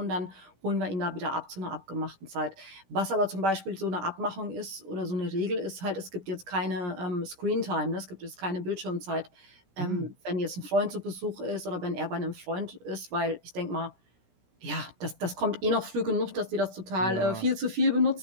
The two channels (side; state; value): left; late; 17 ms